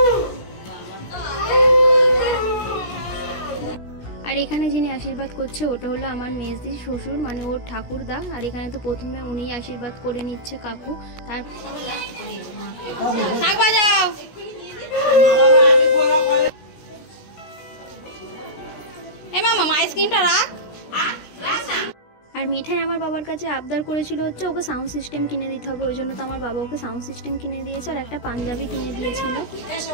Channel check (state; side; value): late; right; 17 ms